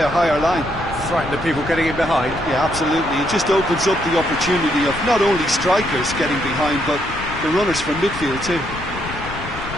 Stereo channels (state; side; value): noise; left; rumble, 12 dB below the sound